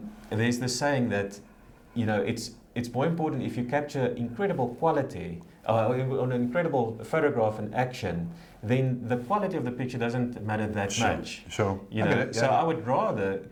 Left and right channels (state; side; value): identical; both; correlation 1.00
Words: There's the saying that, it's more important if you capture incredible quality, on an incredible photograph and action, then the quality of the picture doesn't matter that much. Sure. So I would rather